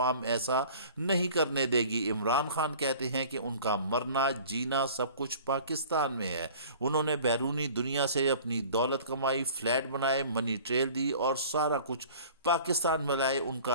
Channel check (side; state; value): both; inverted; correlation -0.46